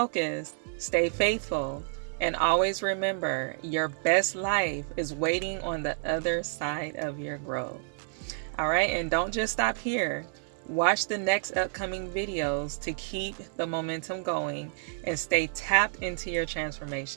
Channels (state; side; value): silent; left; digital silence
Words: stay faithful, and always remember, your best life is waiting on the other side of your growth. All right, and don't just stop here. Watch the next upcoming videos to keep the momentum going and stay tapped into your